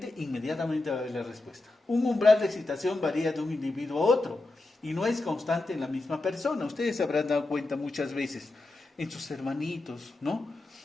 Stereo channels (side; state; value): right; quieter; 3.0 dB